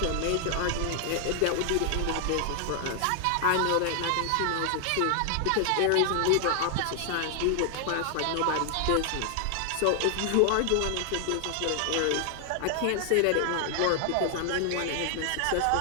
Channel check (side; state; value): both; different; correlation 0.00